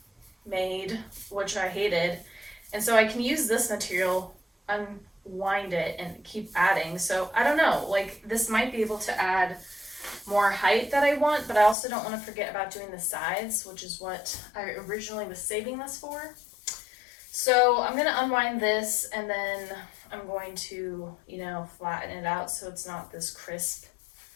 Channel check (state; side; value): drops out; right; at 11.8 s